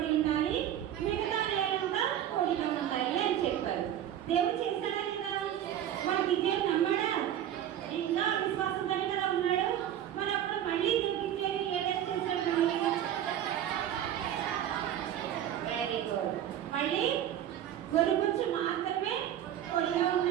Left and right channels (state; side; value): quieter; left; 10.9 dB